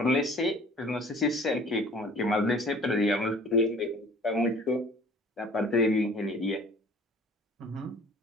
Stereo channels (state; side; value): normal; both; correlation 0.50